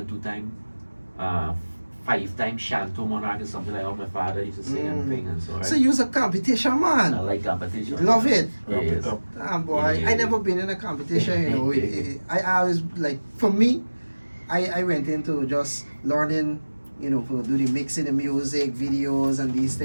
2 times. 5-time Shanto Monarch is something like how my father used to sing and thing and so. Right? So you're a competition man. I like competition. Love it. Yes. Damn boy, I never been in a competition. I always like, for me, I went into just learning, for do the mixing the music, videos and these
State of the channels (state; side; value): inverted; both; correlation -1.00